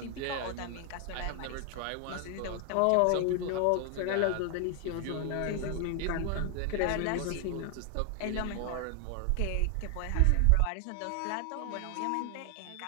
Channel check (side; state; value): both; different; correlation 0.00